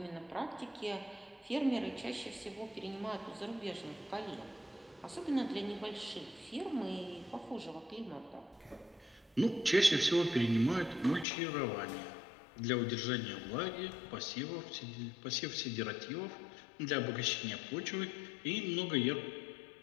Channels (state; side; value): drops out; right; at 11.2 s